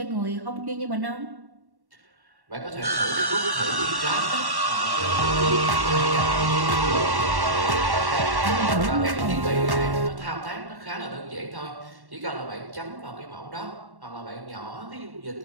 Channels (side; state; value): left; late; 1.1 ms